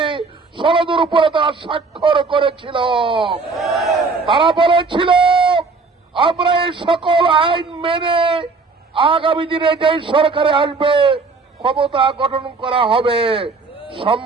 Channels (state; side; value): quieter; left; 4.2 dB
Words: সনদের উপরে তারা স্বাক্ষর করেছিল। তারা বলেছিল আমরা এই সকল আইন মেনে আগামী দিনে যেই সরকারে আসবে ক্ষমতা গঠন করা হবে।